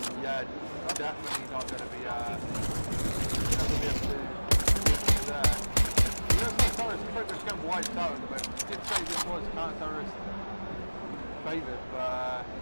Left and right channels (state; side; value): inverted; both; correlation -1.00